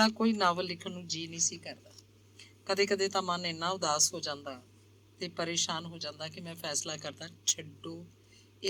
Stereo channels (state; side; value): identical; both; correlation 1.00